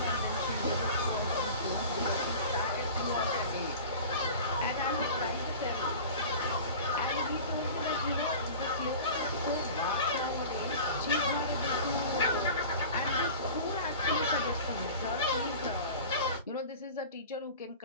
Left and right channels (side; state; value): both; inverted; correlation -0.37